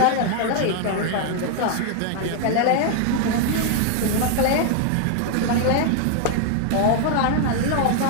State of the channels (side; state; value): both; different; correlation 0.00